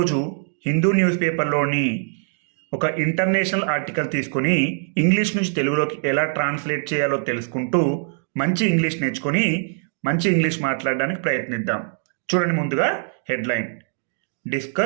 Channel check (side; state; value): left; silent; digital silence